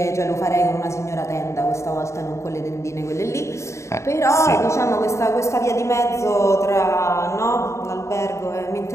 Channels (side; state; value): right; late; 0.14 ms